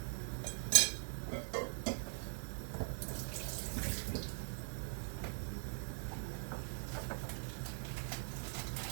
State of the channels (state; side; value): silent; left; digital silence